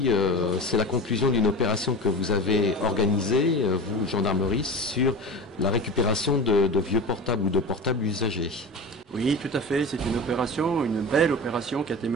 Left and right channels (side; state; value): both; normal; correlation 0.30